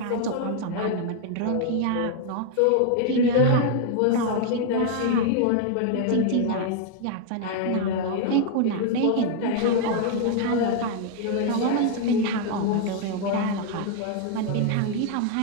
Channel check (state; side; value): different; both; correlation 0.00